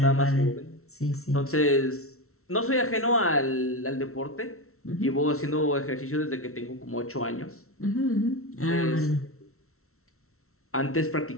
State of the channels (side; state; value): right; late; 0.63 ms